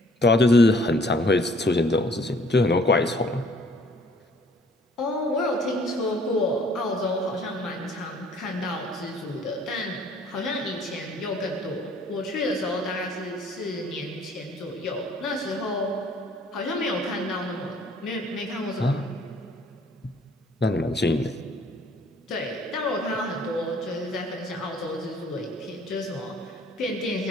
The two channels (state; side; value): normal; both; correlation 0.58